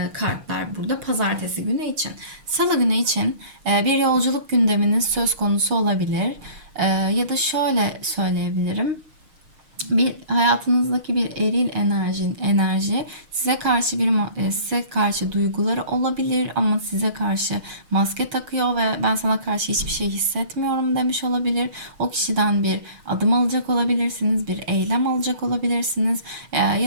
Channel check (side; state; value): left; late; 6.5 ms